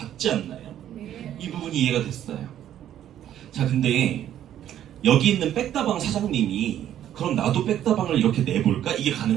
않나요? 이 부분이 이해가 됐어요. 자, 근데 여기 있는 백다방 사장님이 그럼 나도 백다방을 이렇게 내볼까? 이게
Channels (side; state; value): left; quieter; 11.2 dB